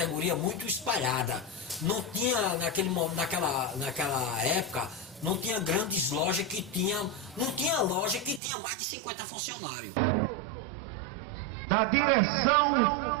muito espalhada. Não tinha, naquela época, não tinha grandes lojas que tinham, não tinha loja que tinha mais de 50 funcionários. Da direção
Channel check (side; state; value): left; drops out; at 8.4 s